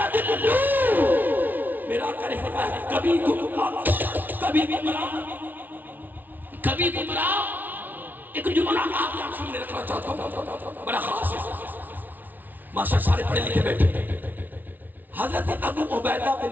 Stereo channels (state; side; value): late; left; 0.084 ms